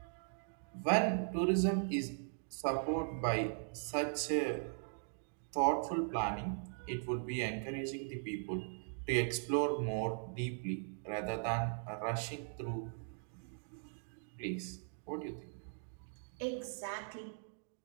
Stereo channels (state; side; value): silent; left; digital silence